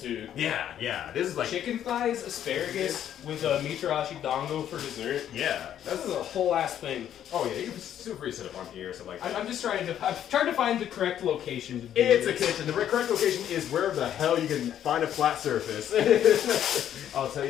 Yeah. This is like... Chicken thighs, asparagus, with a mitarashi dango for dessert. Yeah. This is a whole ass thing. Oh yeah, you can feel free to sit up on here, so like... I'm trying to find the correct location to do It's this. a kitchen. The correct location is wherever the hell you can find a flat surface. I'll tell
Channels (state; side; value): quieter; right; 10.4 dB